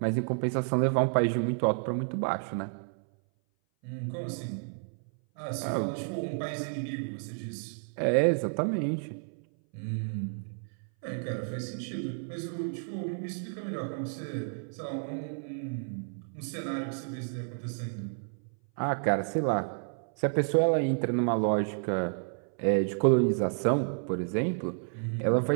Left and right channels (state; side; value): silent; left; 57 dB below the other